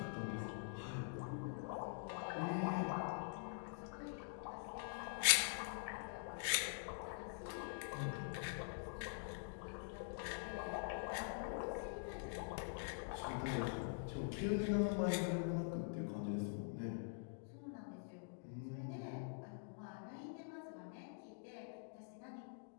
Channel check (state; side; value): silent; right; digital silence